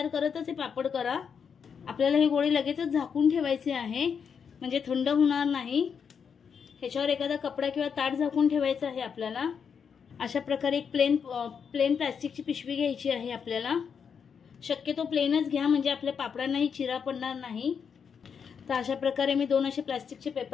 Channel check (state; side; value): quieter; right; 6.7 dB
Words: करतच हे पापड करा. आपल्याला हे गोळे लगेचच झाकून ठेवायचे आहे, म्हणजे थंड होणार नाही. ह्याच्यावर एखादा कपडा किंवा ताट झाकून ठेवायचं आहे आपल्याला. अशा प्रकारे एक प्लेन प्लास्टिकची पिशवी घ्यायची आहे आपल्याला. शक्यतो प्लेनच घ्या, म्हणजे आपल्या पापडांनाही चिरा पडणार नाही. तर अशा प्रकारे मी 2 असे प्लास्टिकचे